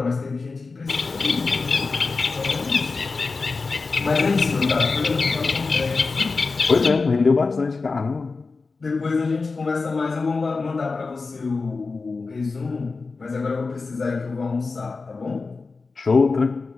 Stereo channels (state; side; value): quieter; right; 4.2 dB